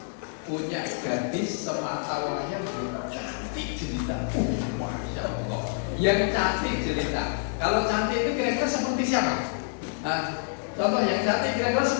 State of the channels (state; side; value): silent; right; digital silence